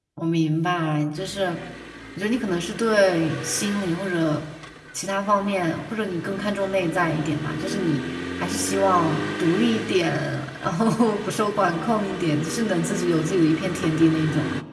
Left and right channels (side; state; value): both; identical; correlation 1.00